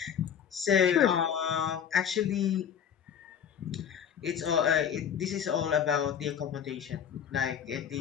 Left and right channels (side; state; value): right; quieter; 8.5 dB